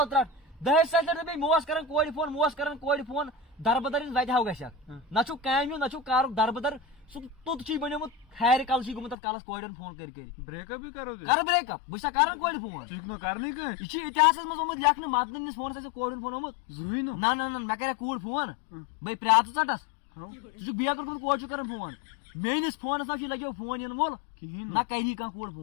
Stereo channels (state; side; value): drops out; right; at 9.2 s